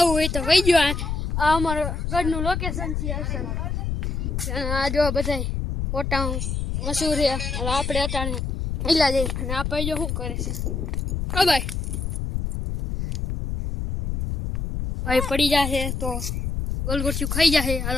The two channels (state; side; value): noise; left; rumble, 2 dB below the sound